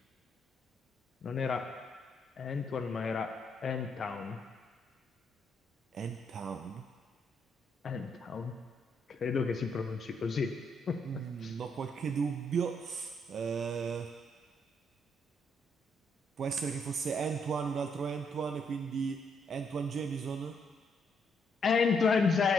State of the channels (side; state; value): both; normal; correlation 0.74